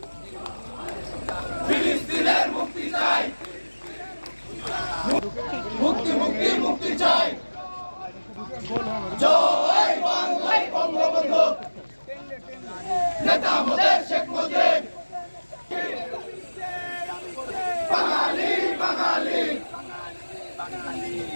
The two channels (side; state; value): both; inverted; correlation -1.00